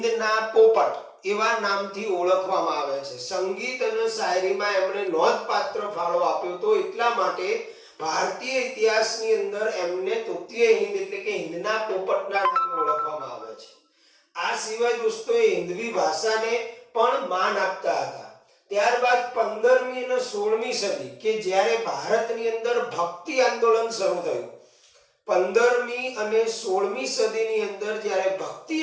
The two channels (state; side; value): identical; both; correlation 1.00